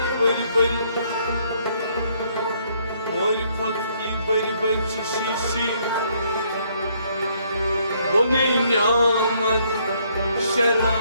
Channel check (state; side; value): inverted; both; correlation -0.68